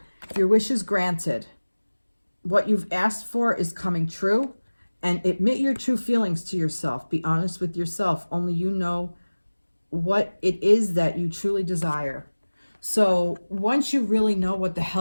Your wish is granted. What you've asked for is coming true. And admit your true feelings to yourself. Be honest with yourself. Only you know what it is that you truly desire. So once you really know what the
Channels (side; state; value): both; inverted; correlation -1.00